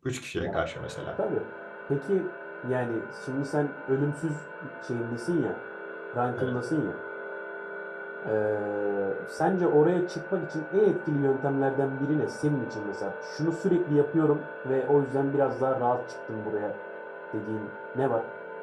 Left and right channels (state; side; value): identical; both; correlation 1.00